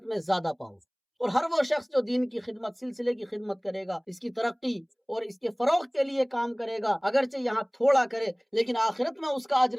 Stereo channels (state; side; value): identical; both; correlation 1.00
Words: میں زیادہ پاؤ۔ اور ہر وہ شخص جو دین کی خدمت سلسلے کی خدمت کرے گا، اس کی ترقی اور اس کے فروغ کے لیے کام کرے گا، اگرچہ یہاں تھوڑا کرے لیکن آخرت میں اس کا